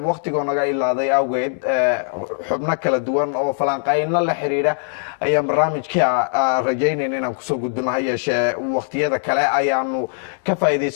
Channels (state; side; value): silent; right; 65 dB below the other